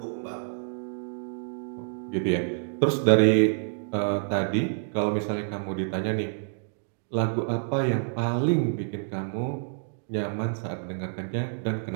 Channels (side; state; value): left; silent; digital silence